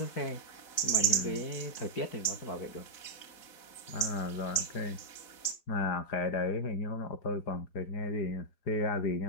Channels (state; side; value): late; right; 4.0 ms